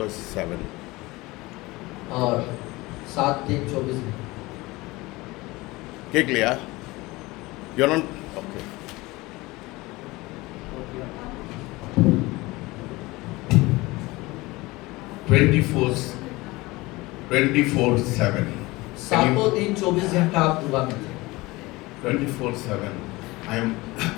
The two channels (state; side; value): quieter; right; 21.4 dB